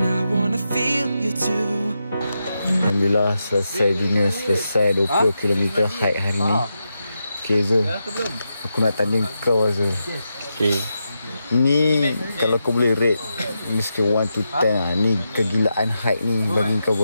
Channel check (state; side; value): inverted; both; correlation -0.87